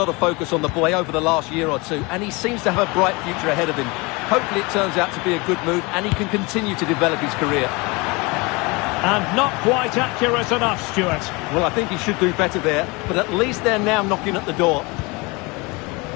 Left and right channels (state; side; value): quieter; right; 26.1 dB